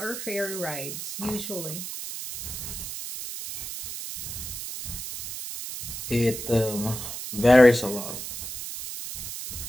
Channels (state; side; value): noise; right; hiss, 7 dB below the sound